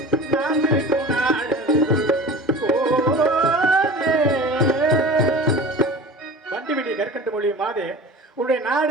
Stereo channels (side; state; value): both; normal; correlation 0.38